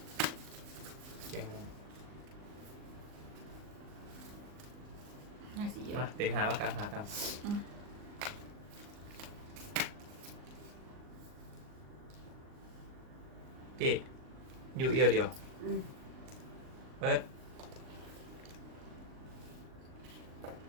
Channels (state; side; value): late; left; 39 ms